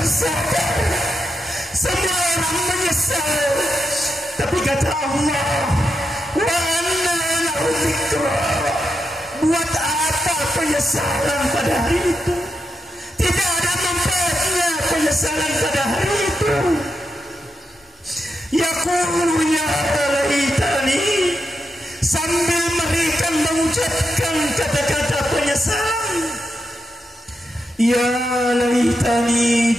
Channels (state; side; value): normal; both; correlation 0.86